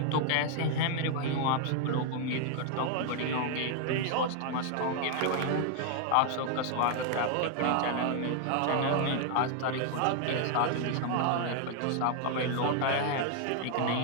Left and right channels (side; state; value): both; different; correlation 0.00